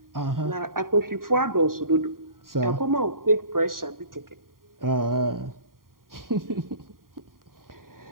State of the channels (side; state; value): left; late; 0.91 ms